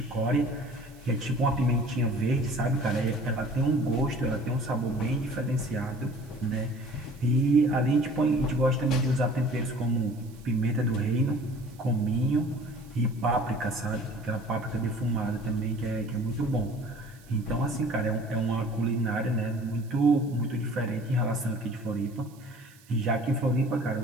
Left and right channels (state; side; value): noise; right; hiss, 27 dB below the sound